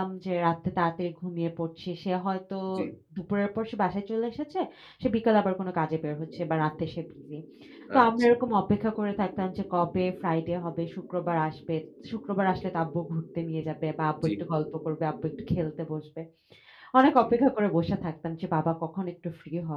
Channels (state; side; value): identical; both; correlation 1.00